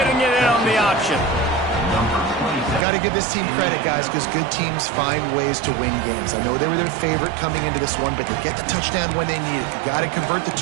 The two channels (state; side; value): drops out; left; at 2.8 s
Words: it in on the option? Got to give this team credit, guys, because good teams find ways to win games. I know they were their favorite coming into this one, but they get the touchdown when they need it. You got to convert the